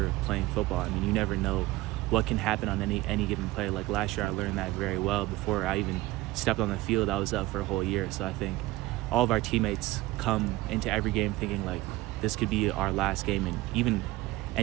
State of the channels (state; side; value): quieter; left; 18.5 dB